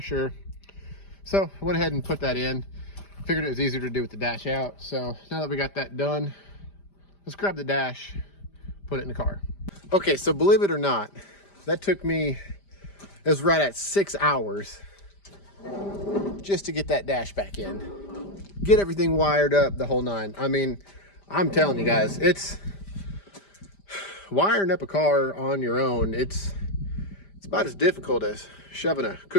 So I went ahead and put that in. Figured it was easier to do with the dash out. So now that we got that done, let's grab the dash, put it in the car. Okay, so believe it or not, that took me, it was right at 6 hours just to get that dash back in. Get everything wired up, the whole nine. I mean, I'm telling you guys, it's wiring up a car on your own. It's about as difficult as shoving a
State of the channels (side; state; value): right; late; 5.0 ms